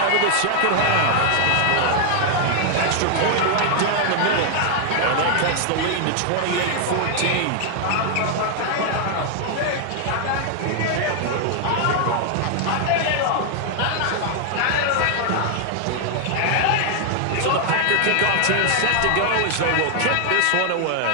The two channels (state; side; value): different; both; correlation 0.00